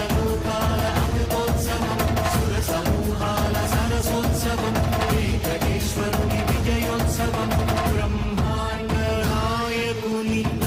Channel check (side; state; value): both; identical; correlation 1.00